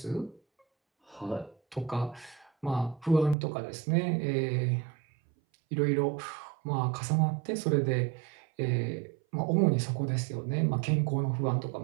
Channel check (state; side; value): drops out; left; at 3.4 s